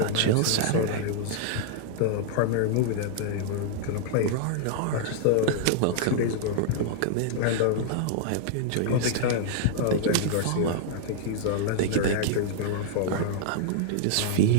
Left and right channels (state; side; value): different; both; correlation -0.01